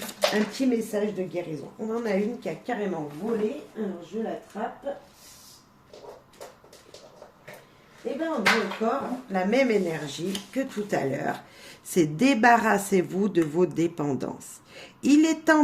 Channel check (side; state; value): both; identical; correlation 1.00